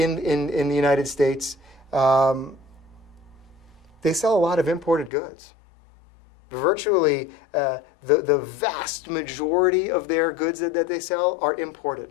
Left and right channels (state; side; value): drops out; right; at 5.1 s